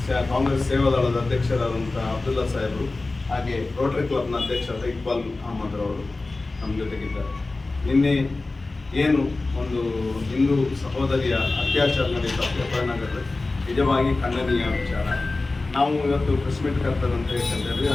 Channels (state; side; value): quieter; right; 3.4 dB